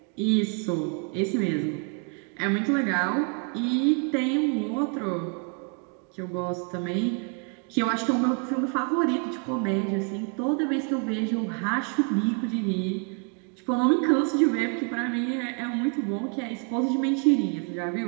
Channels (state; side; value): quieter; left; 38.2 dB